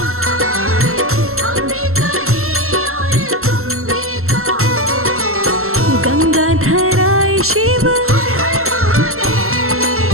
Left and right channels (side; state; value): left; late; 0.62 ms